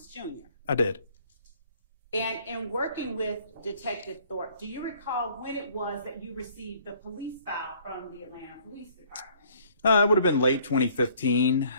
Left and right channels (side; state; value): both; inverted; correlation -0.59